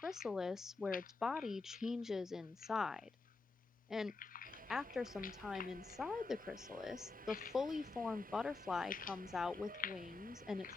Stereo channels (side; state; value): right; quieter; 3.8 dB